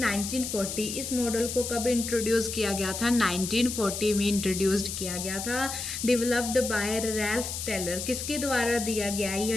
1940। इस मॉडल को कब इंट्रोड्यूस किया गया था, 1940 में इंट्रोड्यूस्ड किया गया था। Developed by Ralph Tyler. किसके द्वारा दिया गया है या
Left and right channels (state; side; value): noise; left; hiss, 5 dB below the sound